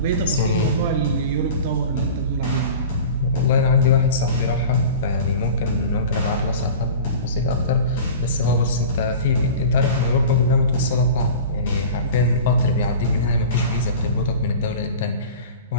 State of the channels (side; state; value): both; inverted; correlation -0.37